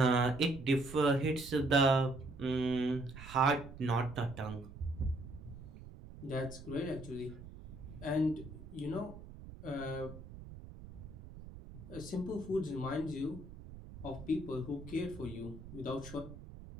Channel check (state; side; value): noise; right; rumble, 14 dB below the sound